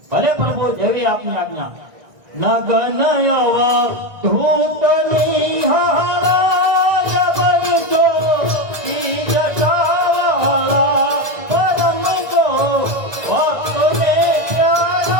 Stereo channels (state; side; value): late; left; 1.6 ms